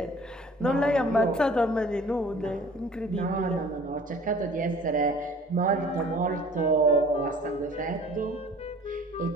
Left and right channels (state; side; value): normal; both; correlation 0.49